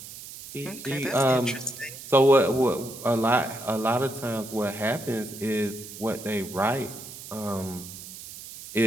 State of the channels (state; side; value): noise; right; hiss, 13 dB below the sound